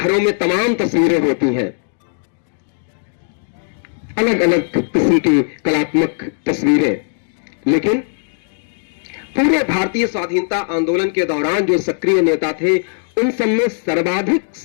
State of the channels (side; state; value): right; silent; 67 dB below the other